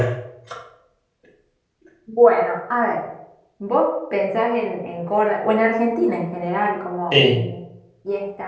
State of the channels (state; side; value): identical; both; correlation 1.00